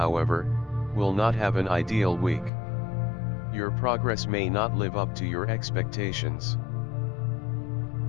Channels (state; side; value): drops out; right; at 2.5 s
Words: will not have an ideal week. Your progress may not live up to your expectations.